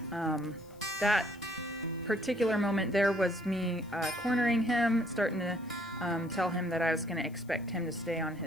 That particular moment there was me cornering him, starting to tell him that I was going to expect him to stay on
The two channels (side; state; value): left; noise; hiss, 28 dB below the sound